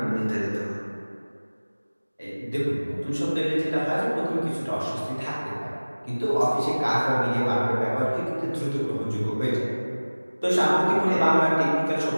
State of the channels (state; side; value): inverted; both; correlation -1.00